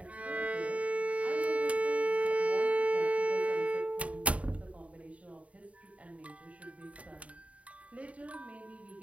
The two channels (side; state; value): left; late; 0.066 ms